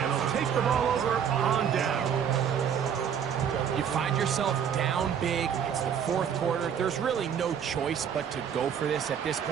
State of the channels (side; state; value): left; quieter; 8.2 dB